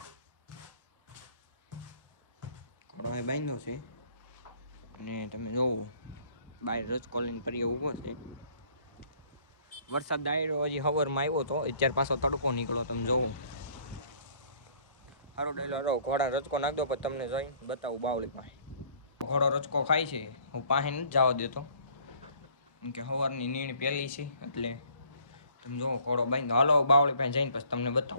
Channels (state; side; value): inverted; both; correlation -0.57